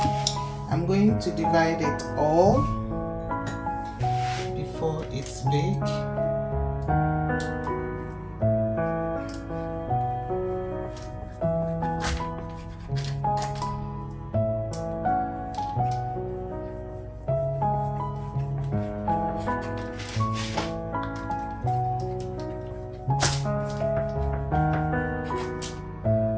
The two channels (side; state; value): both; identical; correlation 1.00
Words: I'm going to divide it all before it's baked.